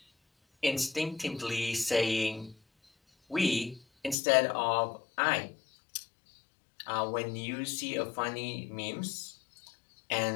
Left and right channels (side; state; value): right; drops out; at 4.2 s